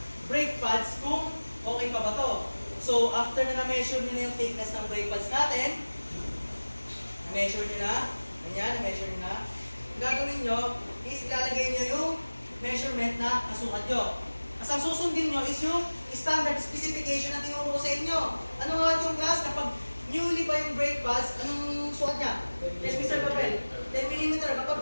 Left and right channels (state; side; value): inverted; both; correlation -1.00